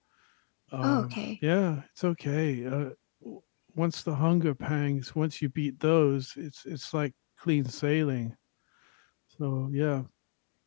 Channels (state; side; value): silent; right; digital silence